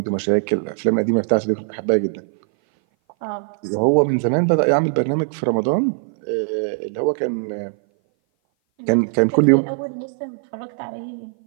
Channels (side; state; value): left; silent; 58 dB below the other